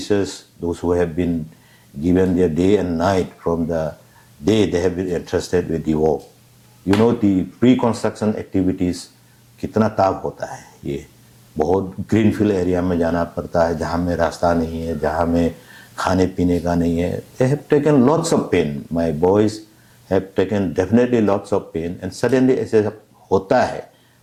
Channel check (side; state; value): both; identical; correlation 1.00